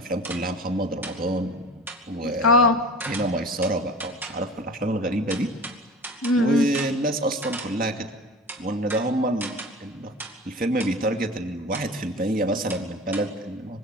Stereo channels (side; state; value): both; normal; correlation 0.36